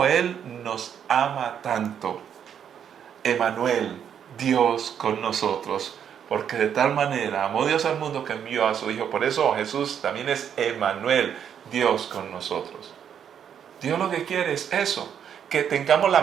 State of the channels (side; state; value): left; quieter; 8.5 dB